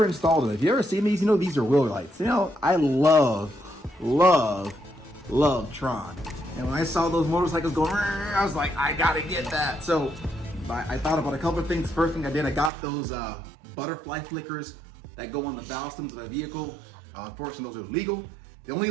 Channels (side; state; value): left; drops out; at 12.7 s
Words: installed it. If you ever seen these, you know these are wheel lights. You know, I love Tron. And when I saw those motorcycles going, I was like, I gotta get that. So I thought about a couple of things. First thing I did, I got those butterfly flickers that go on the valve stems of my vehicle. Unfortunately, those are legal. The only